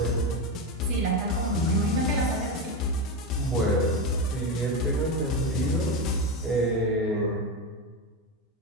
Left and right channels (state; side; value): normal; both; correlation 0.14